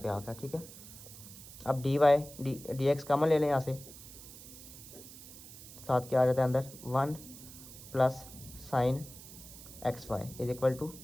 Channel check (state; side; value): noise; right; hiss, 16 dB below the sound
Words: आ गया। ठीक है, अब d y d x common ले लें यहाँ से, साथ क्या आ जाता है अंदर 1 plus sine x y is equal to